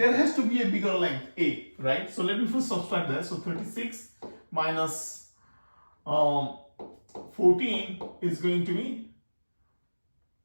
has to be a bigger length A, right? So let me first subtract that. So 36 minus 14 is going to be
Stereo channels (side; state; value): both; inverted; correlation -1.00